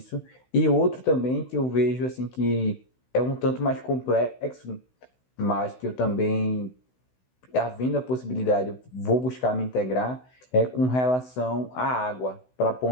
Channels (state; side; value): late; right; 16 ms